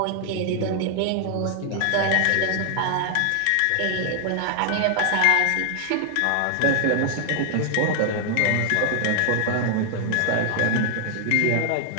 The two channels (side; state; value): both; different; correlation 0.00